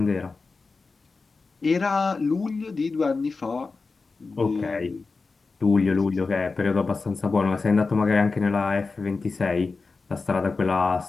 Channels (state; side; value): quieter; right; 4.2 dB